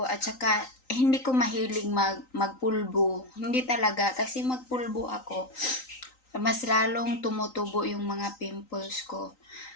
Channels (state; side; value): late; right; 3.9 ms